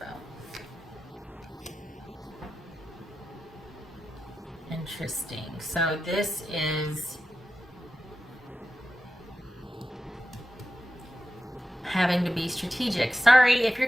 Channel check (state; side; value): normal; both; correlation 0.92